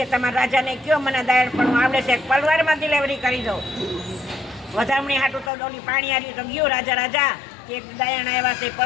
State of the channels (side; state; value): right; drops out; at 5.5 s